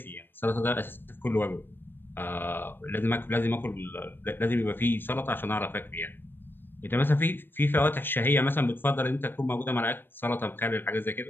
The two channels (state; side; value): late; right; 0.098 ms